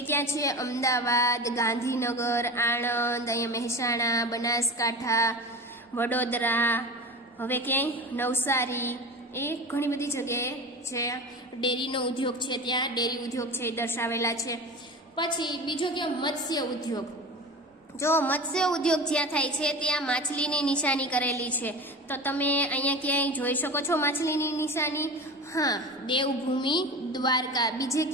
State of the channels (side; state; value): both; normal; correlation 0.31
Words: ક્યાં છે? અમદાવાદ, ગાંધીનગર, આણંદ, અહીંયા મહેસાણા, બનાસકાંઠા, વડોદરા, હવે ક્યાંય નવસારી, એ ઘણી બધી જગ્યાએ છે ડેરીનો ઉદ્યોગ છે. ત્યાં ડેરી ઉદ્યોગ છે એ દર્શાવેલા છે. પછી બીજો કે મત્સ્ય ઉદ્યોગ. જો મત્સ્ય ઉદ્યોગ જ્યાં થાય છે ત્યાં માછલીની નિશાની કરેલી છે. તો તમે અહીંયા ક્યાંય જોઈ શકો છો માછલીની નિશાની? હા, દેવભૂમિ દ્વારકા. બીજે